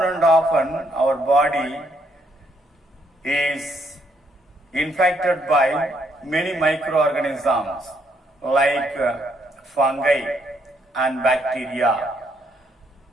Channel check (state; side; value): normal; both; correlation 0.72